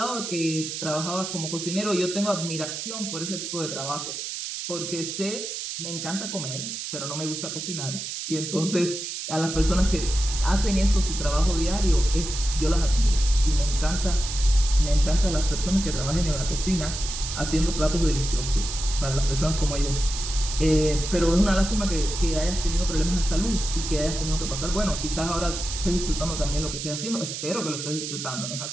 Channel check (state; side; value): noise; right; hiss, 6 dB below the sound